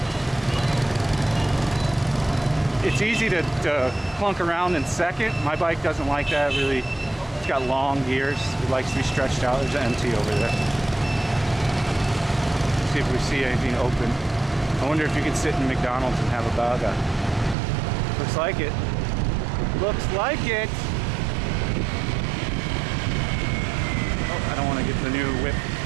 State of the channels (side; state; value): left; drops out; at 17.6 s